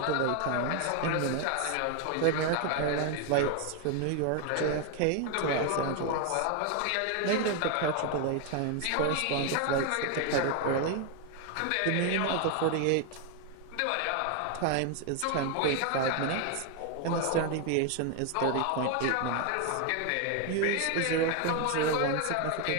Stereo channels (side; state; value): both; different; correlation 0.01